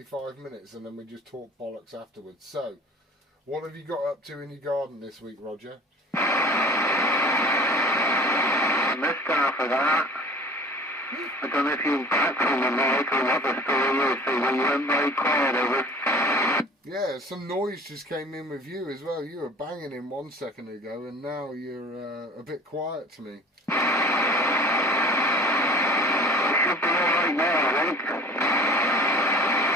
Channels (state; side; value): normal; both; correlation 0.44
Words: minutes and then we just talk bollocks afterwards. So, what have you got up to in your garden this week, Roger? I missed half of that. I don't know if you're back from the mic or what the story is, so you went very quiet over. Yeah, some noise just came in with you as well. You were banging in 1 second ago and now you're a bit quiet to me. You should be alright now, I think.